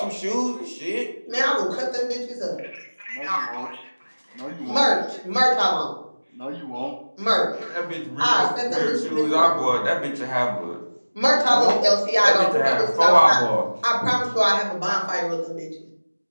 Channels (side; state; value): both; inverted; correlation -1.00